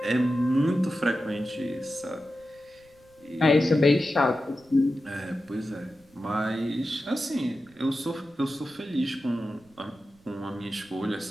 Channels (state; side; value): noise; right; rumble, 30 dB below the sound